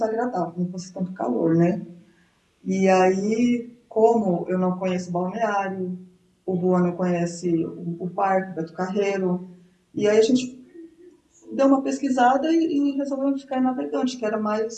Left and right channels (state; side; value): identical; both; correlation 1.00